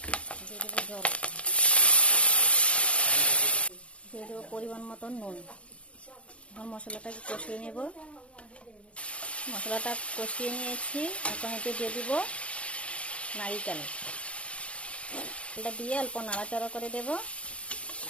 দিয়ে দেবো জল, দিয়ে দেবো পরিমাণ মতন নুন। এখন মশলাটাকে কষিয়ে নেব। মশলাটা কষিয়ে নিয়েছি। এখন এতে দিয়ে দিব নারিকেল, এটা দিয়ে অল্প নাড়াচাড়া করে দেব।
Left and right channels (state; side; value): late; right; 0.061 ms